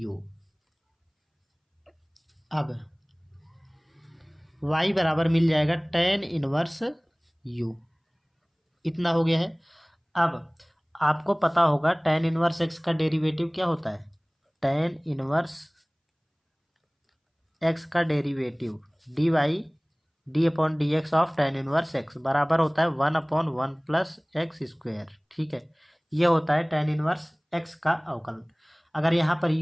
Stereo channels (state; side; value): identical; both; correlation 1.00